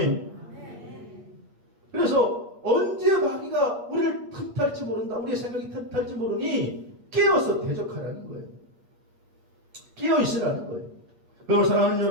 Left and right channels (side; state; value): left; late; 8.5 ms